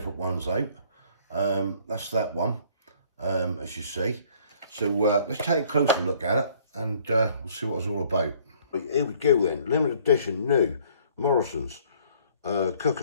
ones out. That's that one, as you see. So let's take a closer look at it and we'll see what it's all about. Right, here we go then. Limited edition, new, Morrisons.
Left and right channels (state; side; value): inverted; both; correlation -0.59